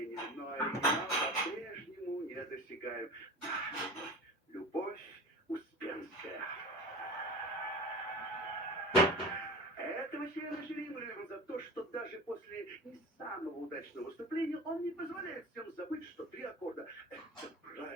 но оригинал по-прежнему недосягаем. Любовь Успенская. Этого члена жюри мы любим за то, что даже после не самого удачного выступления он не позволяет всем забыть, что 3 аккорда — это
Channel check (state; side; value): normal; both; correlation 0.33